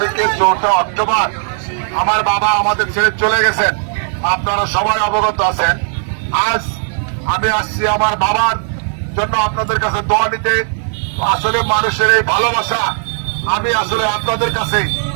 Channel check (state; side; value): silent; left; 69 dB below the other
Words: ৪ অক্টোবর আমার বাবা আমাদের ছেড়ে চলে গেছেন। আপনারা সবাই অবগত আছেন। আজ আমি আসছি আমার বাবার জন্য আপনাদের কাছে দোয়া নিতে। আসলে মানুষের এই ভালোবাসা, আমি আসলে আপনাদের কাছে